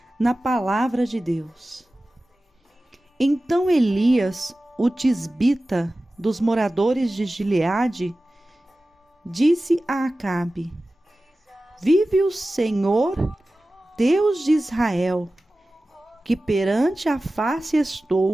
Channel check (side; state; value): both; normal; correlation 0.96